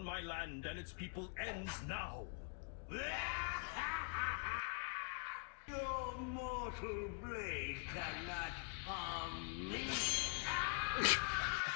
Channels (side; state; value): right; quieter; 38.9 dB